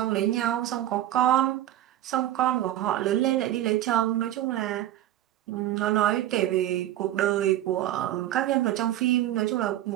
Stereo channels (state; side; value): quieter; left; 13.3 dB